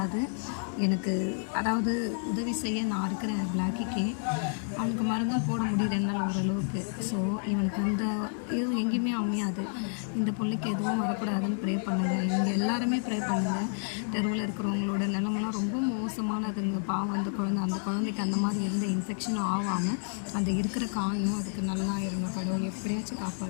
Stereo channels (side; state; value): right; silent; 58 dB below the other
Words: எனக்கு அதாவது உதவி செய்ய நான் இருக்கிறேன் பிளாக்கிக்கு. அவனுக்கு மருந்தும் போட முடியுது என்னால் ஓரளவுக்கு. ஸோ இவனுக்கு அந்த இதுவும் எங்கேயுமே அமையாது. இந்த பிள்ளைக்கு எதுவும் வரக்கூடாதுன்னு ப்ரே பண்ணுங்கள். நீங்கள் எல்லாருமே ப்ரே பண்ணுங்கள். தெருவில் இருக்கிறவங்களோட நிலமெல்லாம் ரொம்ப மோசமானதுங்க. பாவம் அந்த குழந்தைக்கு அந்த மாதிரி எந்த இன்ஃபெக்ஷனும் ஆகாமல் அந்த இருக்கிற காயம் அதுக்கு நல்லா இருணும். கடவுள் எப்படியாச்சும்